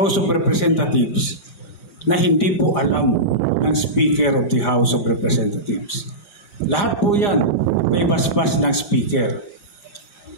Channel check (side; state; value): right; late; 4.9 ms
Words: of Representatives na hindi po alam ng Speaker of the House of Representatives. Lahat po yan may basbas ng Speaker.